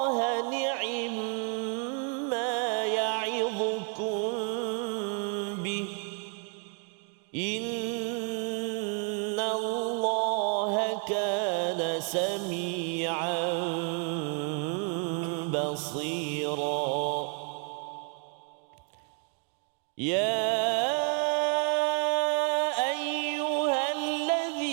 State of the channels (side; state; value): left; quieter; 38.4 dB